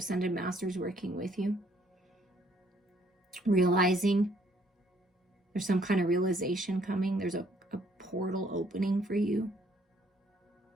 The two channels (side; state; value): both; normal; correlation 0.65